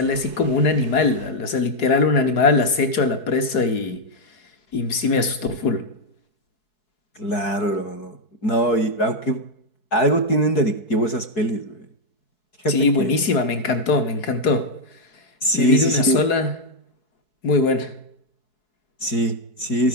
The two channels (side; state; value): right; late; 4.7 ms